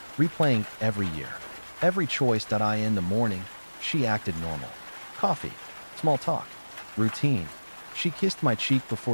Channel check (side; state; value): both; inverted; correlation -1.00